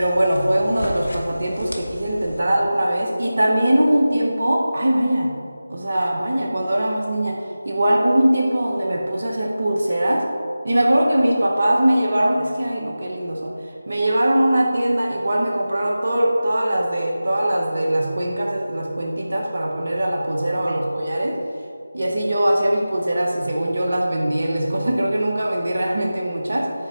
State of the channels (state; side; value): inverted; both; correlation -0.96